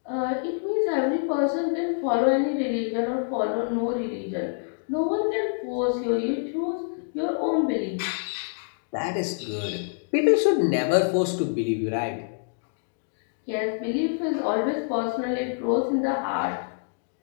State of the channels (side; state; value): right; silent; digital silence